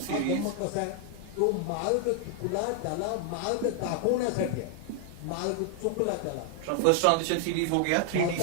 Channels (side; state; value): both; different; correlation 0.00